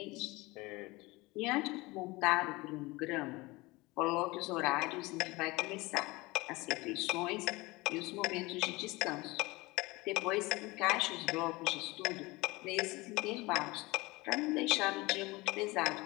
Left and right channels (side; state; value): right; quieter; 22.4 dB